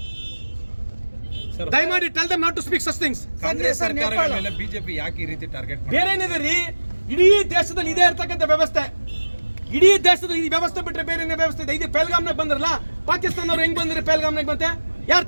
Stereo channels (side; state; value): both; inverted; correlation -1.00